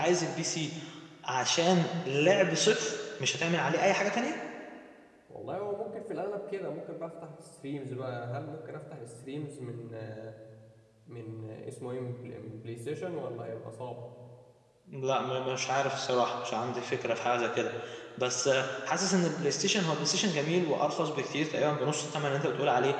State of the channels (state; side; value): identical; both; correlation 1.00